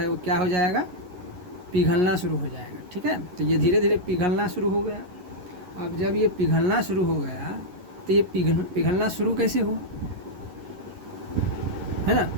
वो क्या हो जाएगा, पिघलना शुरू हो जाएगा। ठीक है, तो ये धीरे धीरे पिघलना शुरू हो गया। अब जब ये पिघलना शुरू हो गया तो ये पिघलना शुरू कैसे हुआ, है ना?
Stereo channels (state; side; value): late; left; 11 ms